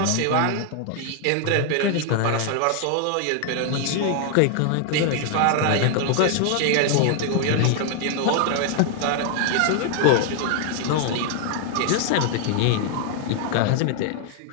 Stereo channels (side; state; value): both; different; correlation 0.00